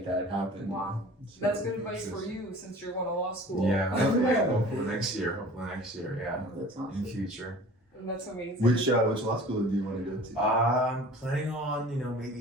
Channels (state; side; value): normal; both; correlation 0.44